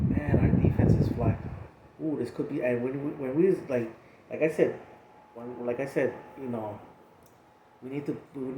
our defense is flying. Ooh, this could be. And when we like I said, like I said, we need to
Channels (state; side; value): identical; both; correlation 1.00